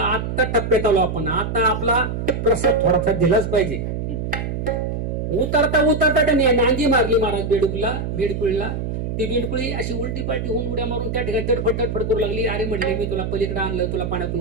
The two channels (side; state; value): right; noise; hum, 3 dB below the sound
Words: आता टप्प्यात आलो आपण, आता आपला प्रसाद थोडासा दिलाच पाहिजे. उतरता उतरता त्याने नांगी मारली महाराज बेडकुळीला. ती बेडकुळी अशी उलटी पालटी होऊन उड्या मारून त्या ठिकाणी तडफड तडफड करू लागली. अरे म्हणले मी तुला पलीकडे आणलं, तुला